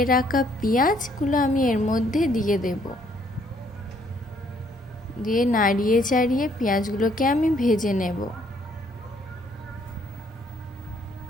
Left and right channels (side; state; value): both; normal; correlation 0.66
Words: রাখা পেঁয়াজগুলো আমি এর মধ্যে দিয়ে দেব। দিয়ে নাড়িয়ে চাড়িয়ে পেঁয়াজগুলোকে আমি ভেজে নেব।